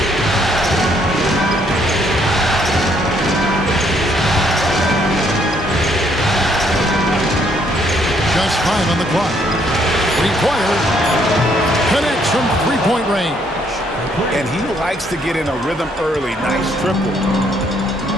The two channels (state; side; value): normal; both; correlation 0.69